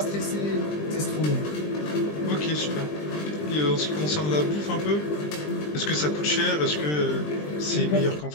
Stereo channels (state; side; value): late; right; 20 ms